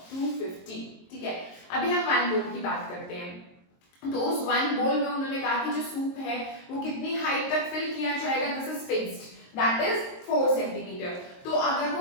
250, ठीक है। अभी हम one bowl की बात करते हैं। तो उस one bowl में उन्होंने कहा कि जो सूप है वो कितनी हाइट तक फिल किया जाएगा, this is fixed, that is 4 centimetre. तो अगर वो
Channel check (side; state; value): right; late; 22 ms